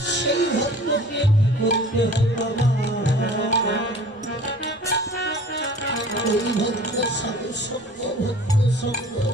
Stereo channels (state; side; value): normal; both; correlation 0.45